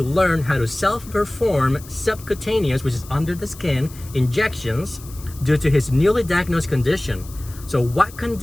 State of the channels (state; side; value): noise; left; hiss, 19 dB below the sound